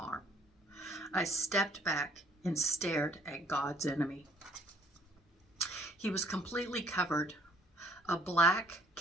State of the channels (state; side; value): normal; both; correlation 0.60